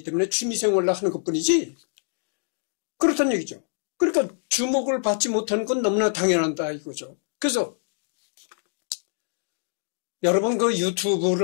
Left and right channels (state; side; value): silent; right; digital silence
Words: 때문에 취미생활로 하는 것뿐이지 그렇다는 얘기죠. 그러니까 주목을 받지 못하는 건 너무나 당연하다 이거죠. 그래서 여러분